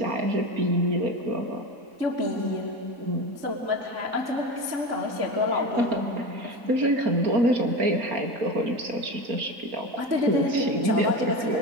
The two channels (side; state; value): left; late; 4.3 ms